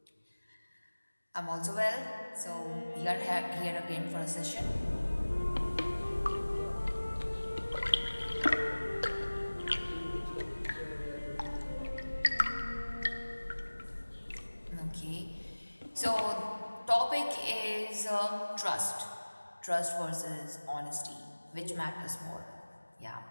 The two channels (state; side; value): inverted; both; correlation -1.00